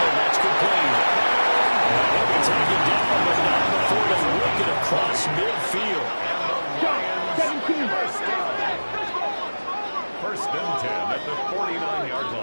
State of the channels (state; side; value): inverted; both; correlation -1.00